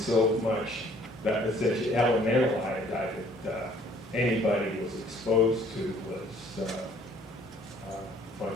so much, that essentially elemental iodine that anybody was exposed to was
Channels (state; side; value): normal; both; correlation 0.59